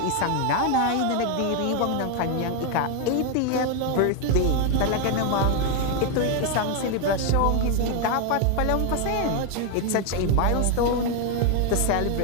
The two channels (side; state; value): both; different; correlation 0.01